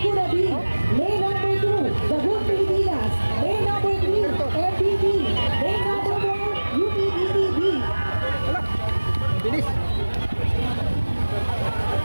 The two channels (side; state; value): both; inverted; correlation -1.00